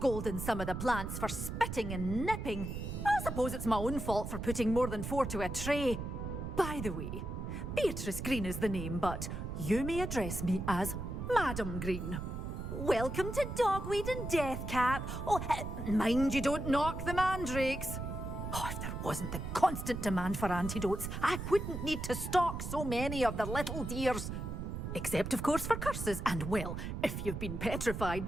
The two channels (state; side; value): noise; right; rumble, 5 dB below the sound